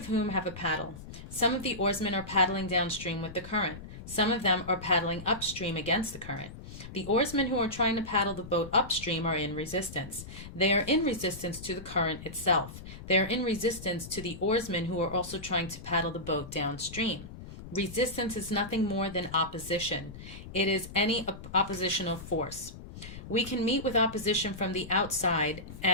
whom have a paddle. Some of the oarsmen are paddling downstream with the current. Some of them are paddling upstream against the current. The oarsmen who are trying to paddle the boat upstream are in resistance. They are in resistance to the current itself. They are in resistance to the oarsmen who are also trying to paddle the boat downstream. Resistance is nothing more than opposition. It is any oppositional force. We can meet with opposition from the outside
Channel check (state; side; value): noise; left; rumble, 13 dB below the sound